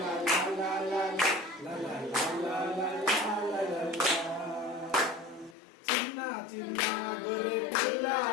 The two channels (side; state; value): right; drops out; at 5.6 s